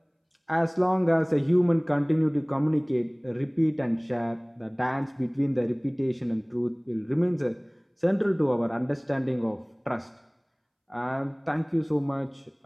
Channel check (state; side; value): identical; both; correlation 1.00